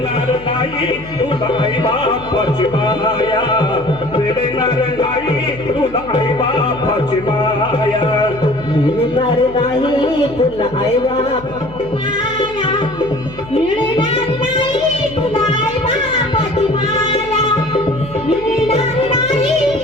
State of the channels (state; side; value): noise; left; hum, 17 dB below the sound